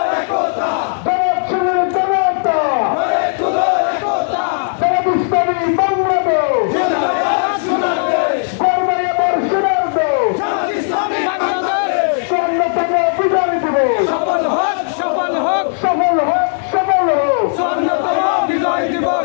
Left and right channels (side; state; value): right; silent; digital silence